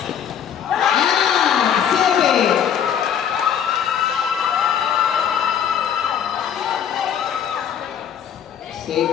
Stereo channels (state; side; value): quieter; right; 8.7 dB